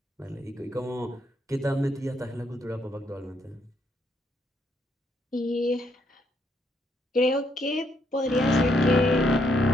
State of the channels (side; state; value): both; normal; correlation 0.74